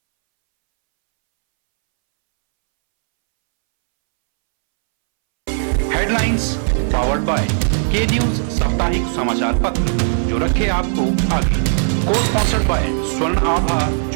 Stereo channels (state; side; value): silent; left; 68 dB below the other